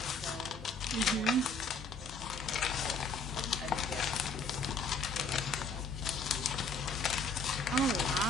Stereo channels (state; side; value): quieter; right; 3.4 dB